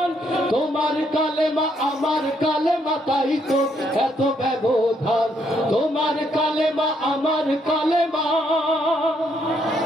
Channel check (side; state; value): both; normal; correlation 0.73